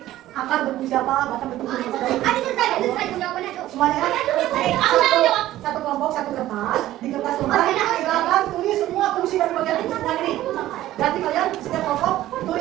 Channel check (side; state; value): left; quieter; 14.5 dB